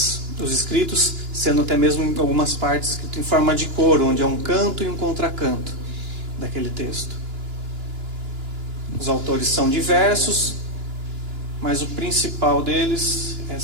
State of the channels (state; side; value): late; left; 2.9 ms